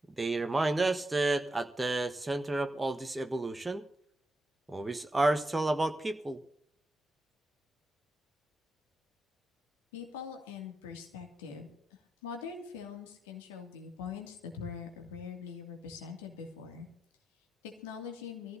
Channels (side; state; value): both; normal; correlation 0.87